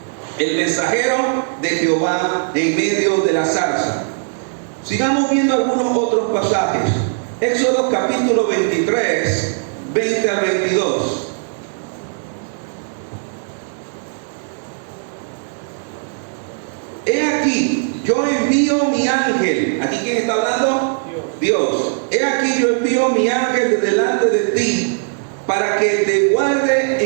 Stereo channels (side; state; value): left; silent; digital silence